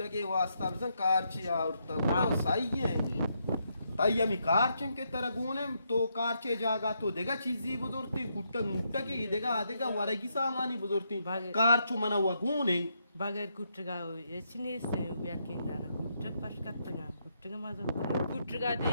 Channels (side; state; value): both; inverted; correlation -0.78